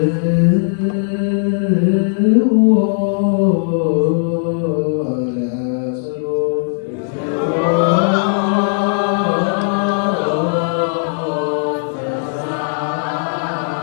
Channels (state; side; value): silent; right; 65 dB below the other